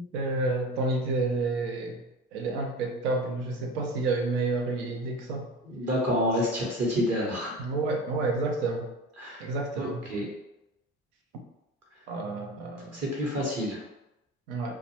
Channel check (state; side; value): normal; both; correlation 0.32